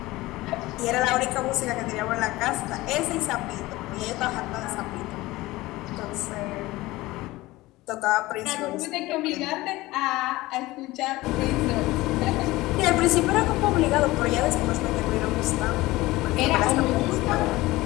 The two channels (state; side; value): quieter; right; 19.1 dB